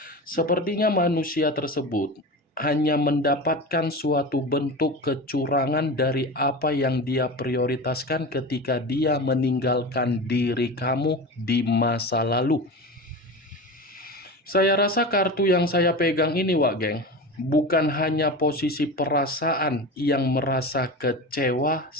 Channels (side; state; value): both; normal; correlation 0.28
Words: Sepertinya manusia tersebut hanya mendapatkan suatu bentuk kecurangan dari apa yang dia prioritaskan ketika dia meninggalkan diri kamu di masa lalu. Saya rasa kartu yang saya pegang ini, Wak Geng, bukan hanya posisi perasaan yang merasa kecewa,